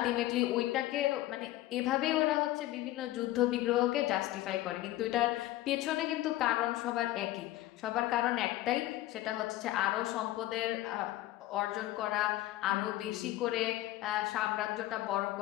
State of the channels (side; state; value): right; quieter; 15.8 dB